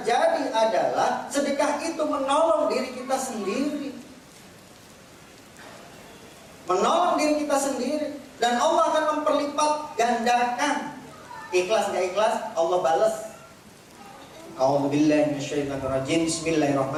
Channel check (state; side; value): identical; both; correlation 1.00